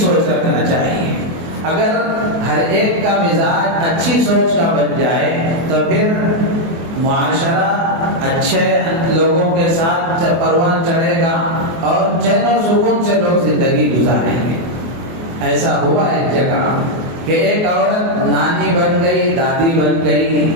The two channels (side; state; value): left; late; 24 ms